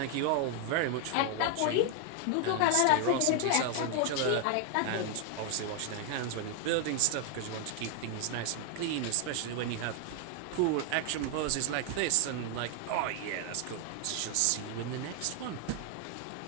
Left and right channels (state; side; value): different; both; correlation 0.00